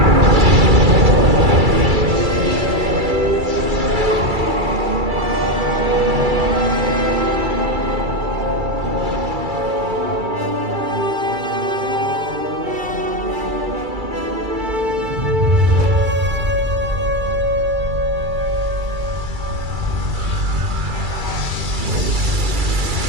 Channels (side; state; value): left; late; 2.3 ms